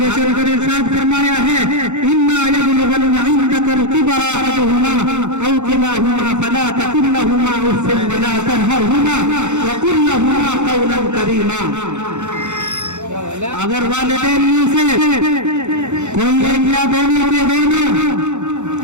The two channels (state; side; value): late; left; 0.83 ms